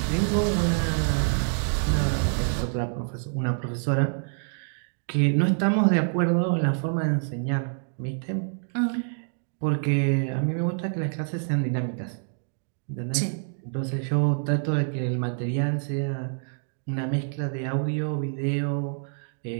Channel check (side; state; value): left; silent; digital silence